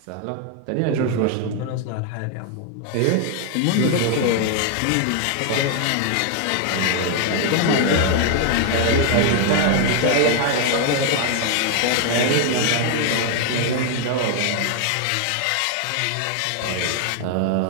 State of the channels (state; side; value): different; both; correlation 0.00